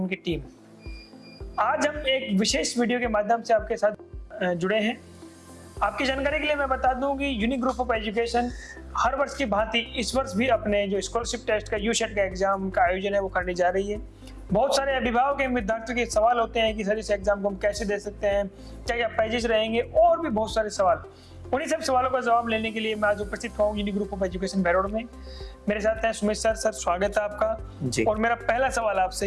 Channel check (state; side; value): identical; both; correlation 1.00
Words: टीम। आज हम एक विशेष वीडियो के माध्यम से आपके साथ जुड़े हैं। आपकी जानकारी के लिए मैं बता दूं कि यूनिक ग्रुप ऑफ एजुकेशन हर वर्ष की भांति इस वर्ष भी अपने जो स्कॉलरशिप टेस्ट का यूसेट का एग्जाम का आयोजन है वो करने जा रही है। बहुत सारे अभिभावक एवं विद्यार्थियों के सवाल होते हैं कि सर इस एग्जाम को हम कैसे दे सकते हैं, क्या क्या प्राइजेस रहेंगे और भी बहुत सारे सवाल। उन्हीं सब सवालों का जवाब लेने के लिए मैं आज उपस्थित हुआ हूँ यूनिक ग्रुप ऑफ एजुकेशन भैरोड में। मेरे साथ हैं सुमेश सर। सर स्वागत है आपका जी। और मेरा पहला सवाल